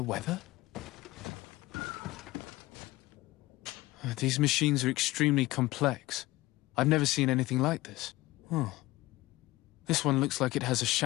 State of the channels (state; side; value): quieter; right; 19.0 dB